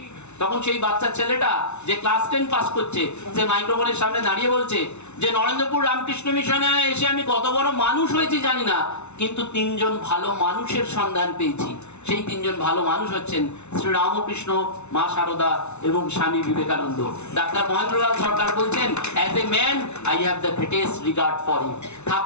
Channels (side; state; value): right; late; 0.82 ms